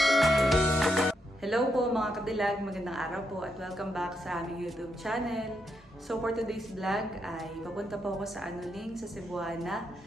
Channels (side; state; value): both; normal; correlation 0.81